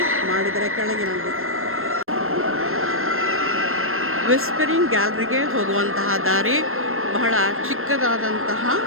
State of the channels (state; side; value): late; left; 0.62 ms